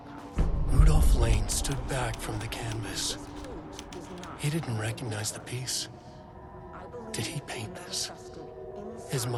Rudolph Lane stood back from the canvas. He didn't recognize the piece. Did he paint this? His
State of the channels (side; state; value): both; identical; correlation 1.00